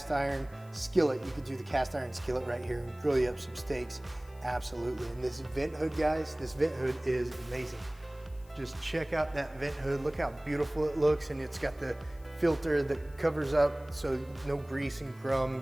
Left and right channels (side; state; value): left; noise; hiss, 28 dB below the sound